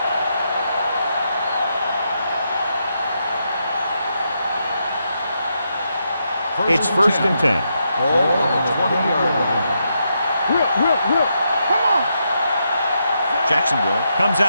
It's first and 10. Ball on the 20-yard line. Whip. Come on. Jacksonville comes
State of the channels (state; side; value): inverted; both; correlation -0.82